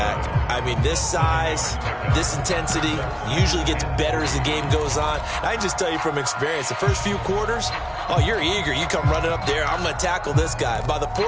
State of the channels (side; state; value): both; identical; correlation 1.00